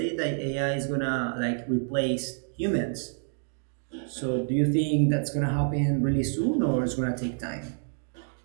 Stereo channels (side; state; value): left; silent; digital silence